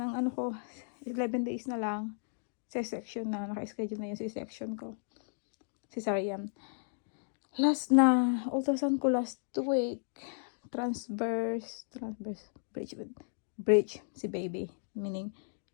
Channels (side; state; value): right; silent; digital silence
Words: ano ko. 11 days na lang. C-section na. Naka-schedule na yung C-section ko. Cesarean. Ultrasound ko last week. Transverse bridge si baby. Meaning,